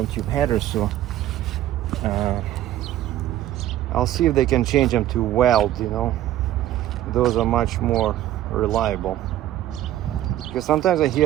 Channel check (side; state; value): left; quieter; 13.3 dB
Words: tube header. So I'll see if they can change them to weld. Those are much more reliable, because sometimes I